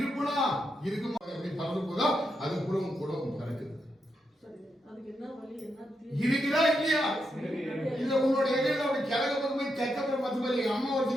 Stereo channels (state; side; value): normal; both; correlation 0.83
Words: இருக்குமா எப்படி பறந்து போதா அது கூட பறக்குது. இருக்குதா இல்லையா? இல்ல உன்னோட இடையில அப்படி கிழக்கு பக்கம் போய் தெக்க பக்கம் 10 பேர் எங்க அம்மா